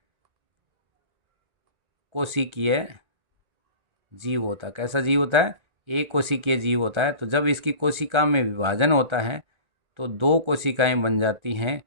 कोशिकीय जीव होता है। कैसा जीव होता है? एक कोशिकीय जीव होता है। तो जब इसकी कोशिका में विभाजन होता है तो 2 कोशिकाएं बन जाती हैं,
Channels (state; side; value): late; left; 1.4 ms